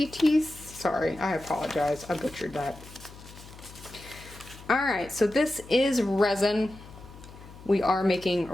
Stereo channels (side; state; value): left; noise; hum, 18 dB below the sound